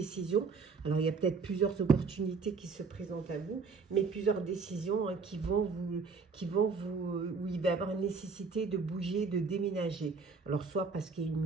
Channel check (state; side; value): quieter; left; 4.8 dB